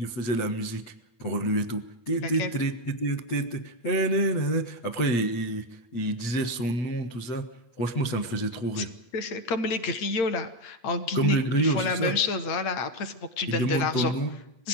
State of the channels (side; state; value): right; late; 8.5 ms